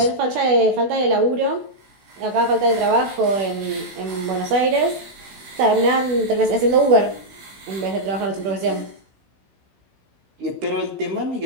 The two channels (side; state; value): left; late; 16 ms